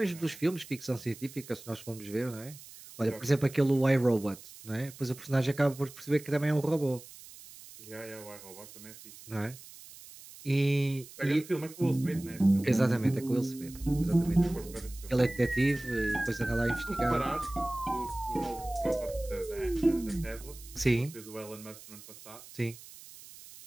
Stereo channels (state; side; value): noise; right; hiss, 18 dB below the sound